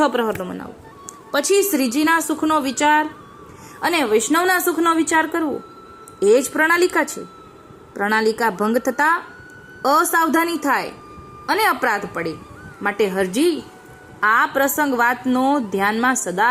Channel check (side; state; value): both; identical; correlation 1.00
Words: પ્રહરનો મનાવો. પછી શ્રીજીના સુખનો વિચાર અને વૈષ્ણવના સુખનો વિચાર કરવો એ જ પ્રણાલિકા છે. પ્રણાલિકા ભંગ થતા અસાવધાની થાય અને અપરાધ પડે. માટે હરજી આ પ્રસંગ વાતનો ધ્યાનમાં